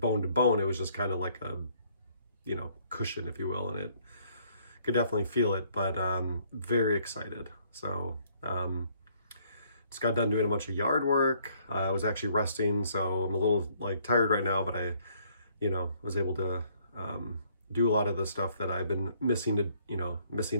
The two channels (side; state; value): both; inverted; correlation -0.65